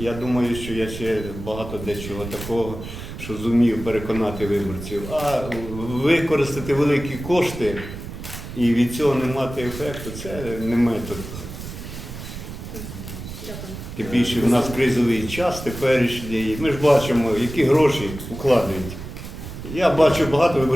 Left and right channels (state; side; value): noise; right; rumble, 10 dB below the sound